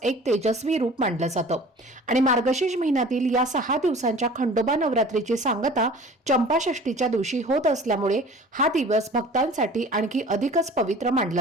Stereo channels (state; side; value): normal; both; correlation 0.44